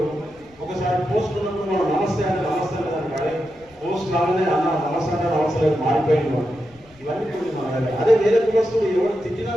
ఒకసారి పోస్ట్ ఉన్నప్పుడు మనం నమస్తే అంటే నమస్తే దానికి అదే పోస్ట్ రాగానే అన్న నమస్తే అంటే నమస్తే మారిపోయింది. ఇవన్నీ మన అదే వేరే కులస్తులు ఎవరు తిట్టినా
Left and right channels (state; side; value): noise; left; rumble, 28 dB below the sound